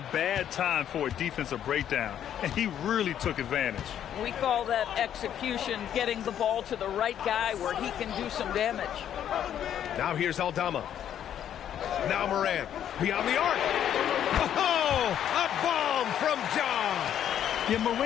bad time for a defensive breakdown, and he really took advantage. We call that execution, getting the ball to the right guy where he can do some damage. Now here's Aldama. Now Morant. Beyond the arc. Oh, a bomb from Ja. Yeah,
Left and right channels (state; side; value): quieter; right; 10.1 dB